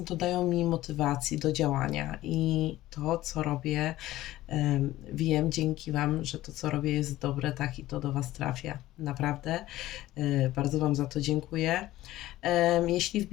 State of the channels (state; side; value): quieter; right; 15.8 dB